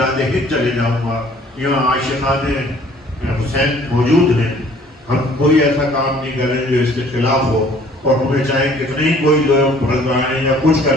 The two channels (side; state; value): both; normal; correlation 0.55